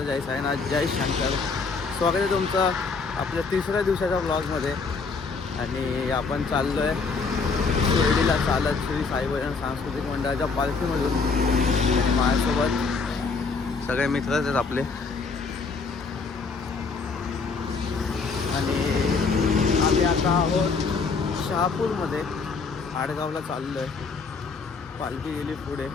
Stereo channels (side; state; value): right; quieter; 4.7 dB